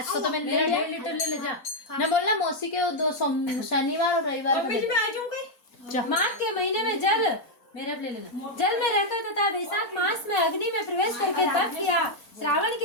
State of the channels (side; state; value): right; late; 4.0 ms